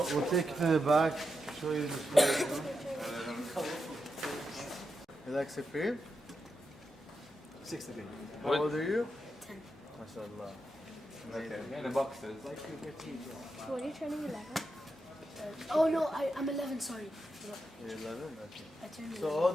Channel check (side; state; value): both; normal; correlation 0.86